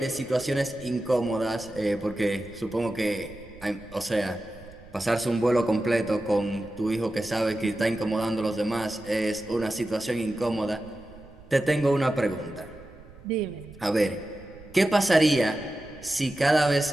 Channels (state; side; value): noise; right; rumble, 21 dB below the sound